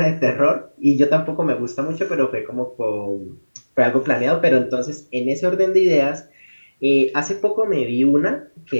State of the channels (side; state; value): both; inverted; correlation -1.00